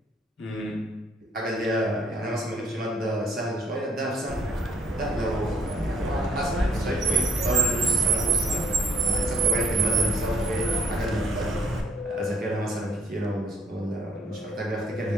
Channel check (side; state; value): both; normal; correlation 0.66